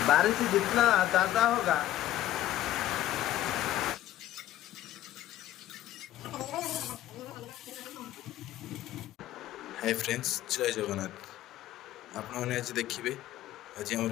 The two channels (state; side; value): quieter; right; 13.5 dB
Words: बारिश जितना ज़्यादा होगा। हाय फ्रेंड्स, जय जगन्नाथ। आपने आज देखिए आज आम